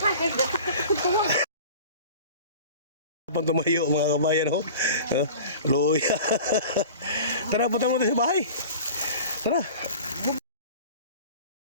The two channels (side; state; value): both; inverted; correlation -0.39